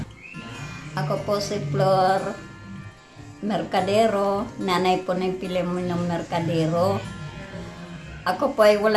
Ako po si Flor Mercadero. Nanay po ng Pilemonong Mercadero. Ako po ay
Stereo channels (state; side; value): identical; both; correlation 1.00